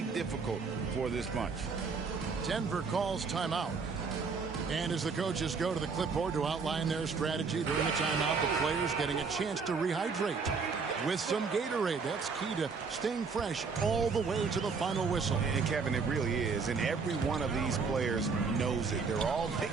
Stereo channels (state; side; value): quieter; left; 5.0 dB